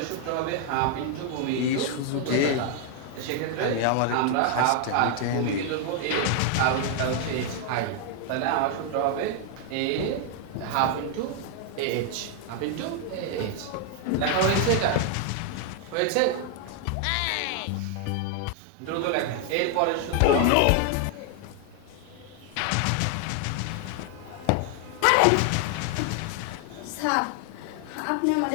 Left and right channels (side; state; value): both; different; correlation 0.00